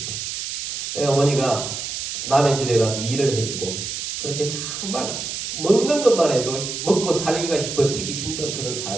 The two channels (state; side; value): noise; right; hiss, 5 dB below the sound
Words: 어머니가 남의 집에 가서 일을 해주고 그렇게 정말 먹는 것만 해도 먹고 살기가 버티기 힘든 그런